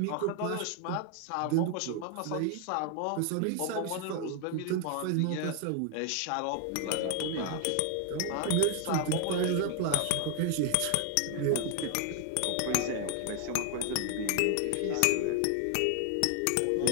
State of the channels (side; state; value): both; different; correlation 0.00